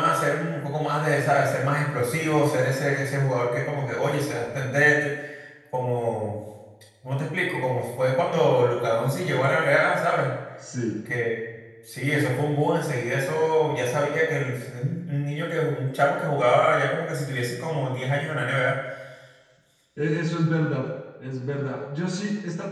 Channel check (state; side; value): identical; both; correlation 1.00